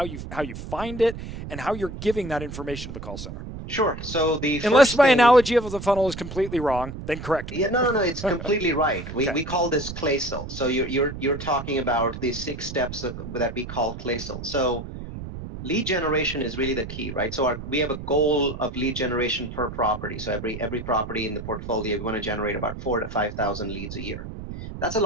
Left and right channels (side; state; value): right; noise; rumble, 9 dB below the sound